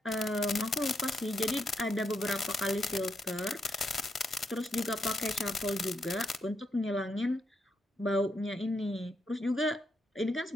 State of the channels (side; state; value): both; normal; correlation 0.81